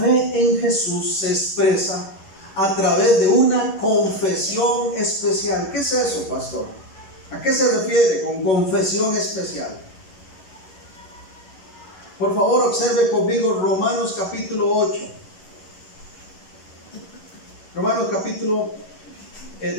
en Jesús se expresa a través de una confesión especial. ¿Qué es eso, pastor? ¿A qué se refiere con confesión especial? Por favor, observe conmigo Romanos capítulo 8. Romanos capítulo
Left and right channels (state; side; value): late; right; 11 ms